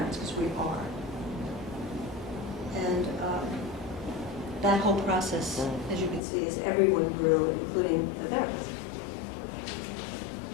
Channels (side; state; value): right; drops out; at 6.2 s